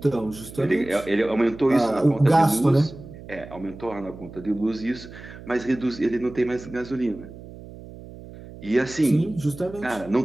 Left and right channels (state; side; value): noise; right; hum, 16 dB below the sound